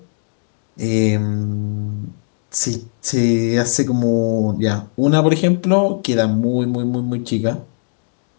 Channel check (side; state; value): right; silent; digital silence